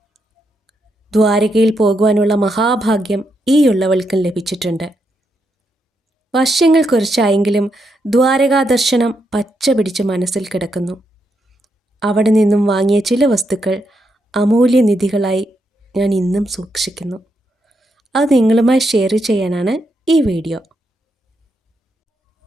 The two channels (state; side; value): normal; both; correlation 0.81